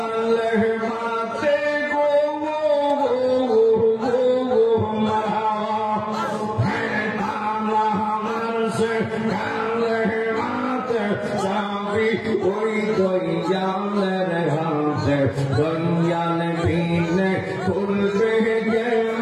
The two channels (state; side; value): identical; both; correlation 1.00